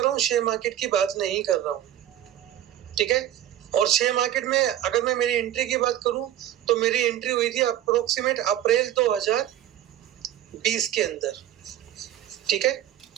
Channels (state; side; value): quieter; left; 12.0 dB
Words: रहा हूँ, शेयर मार्केट की बात नहीं कर रहा हूँ। ठीक है, और शेयर मार्केट में अगर मैं मेरी एंट्री की बात करूं तो मेरी एंट्री हुई थी अप्रोक्सीमेट अप्रैल 2020 के अंदर। ठीक है,